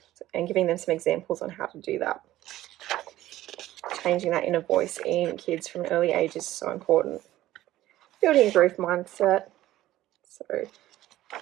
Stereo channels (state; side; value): quieter; left; 14.9 dB